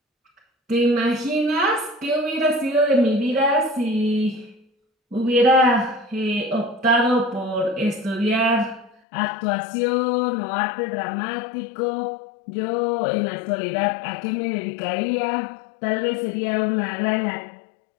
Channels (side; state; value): right; drops out; at 9.0 s